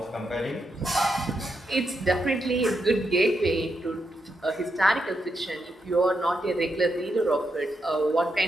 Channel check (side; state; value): both; normal; correlation 0.83